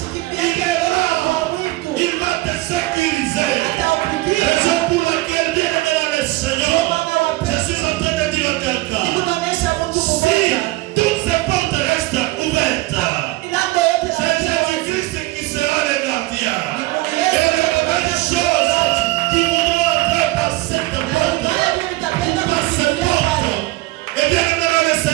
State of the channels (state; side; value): quieter; left; 19.9 dB